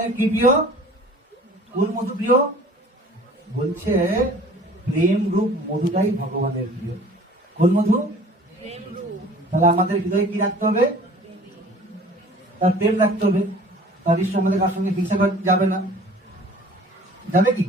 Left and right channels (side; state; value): both; normal; correlation 0.47